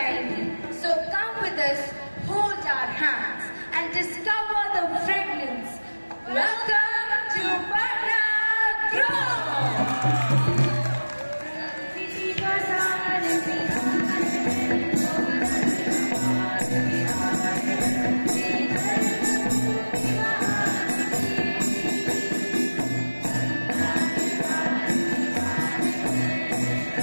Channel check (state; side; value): inverted; both; correlation -1.00